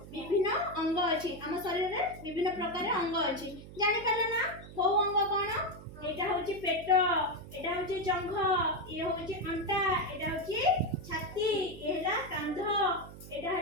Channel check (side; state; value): right; noise; hum, 15 dB below the sound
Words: विभिन्न अंग अछि हम शरीर रे विभिन्न प्रकार अंग अछि जानि पाले ना को अंग कोन एटा होची पेट एटा होची जंघ ये होची अंटा एटा होची छाती एला कांध एटा